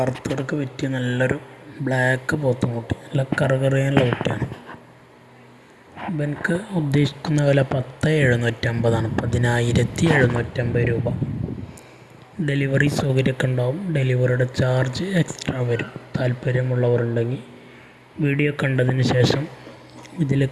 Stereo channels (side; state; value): both; identical; correlation 1.00